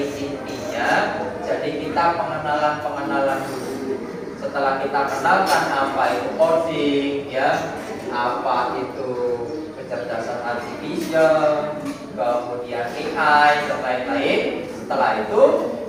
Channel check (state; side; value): identical; both; correlation 1.00